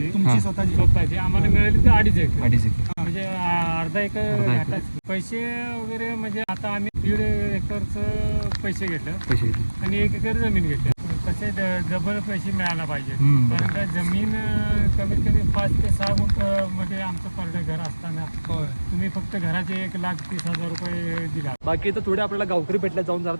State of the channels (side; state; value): both; inverted; correlation -1.00